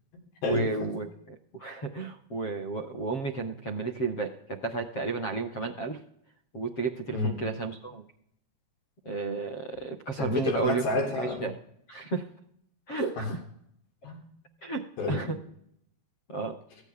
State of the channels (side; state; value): right; late; 7.4 ms